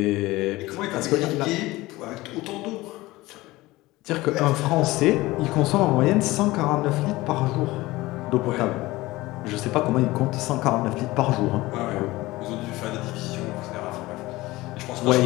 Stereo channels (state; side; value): quieter; right; 19.3 dB